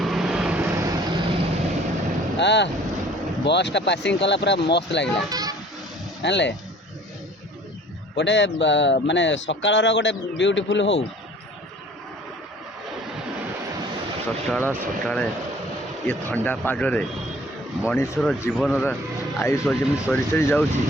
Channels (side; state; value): both; normal; correlation 0.51